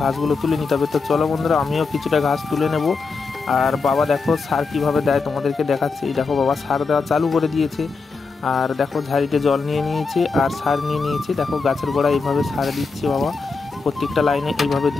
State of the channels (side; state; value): right; quieter; 4.5 dB